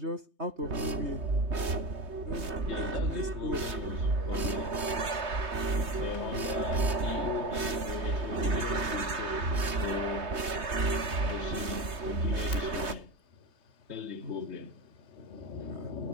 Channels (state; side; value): late; left; 3.2 ms